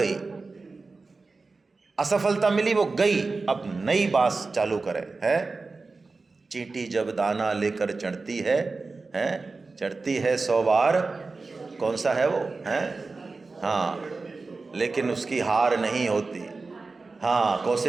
असफलता मिली वो गई, अब नई बात चालू करें, है। चींटी जब दाना लेकर चढ़ती है, चढ़ती है 100 बार, कौन सा है वो, है, हाँ, लेकिन उसकी हार नहीं होती, हाँ,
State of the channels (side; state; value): left; quieter; 3.9 dB